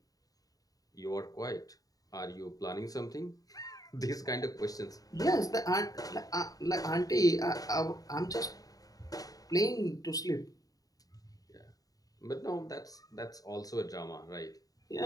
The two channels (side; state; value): right; late; 0.18 ms